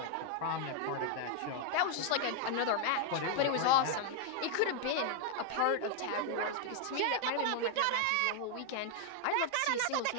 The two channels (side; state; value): both; different; correlation 0.00